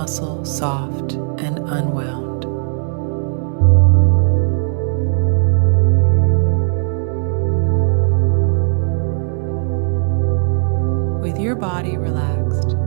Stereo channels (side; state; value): left; silent; 63 dB below the other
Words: soft and unwound. With your body relaxed,